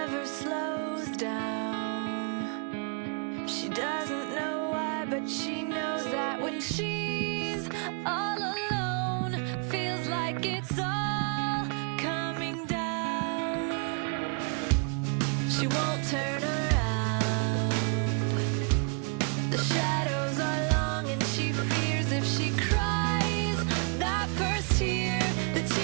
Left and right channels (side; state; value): left; quieter; 38.4 dB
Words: slows down. She doesn't know why, but she knows that when she's all alone, feels like it's all coming down. She won't turn around. The shadows are long and she fears if she cries that first tear, the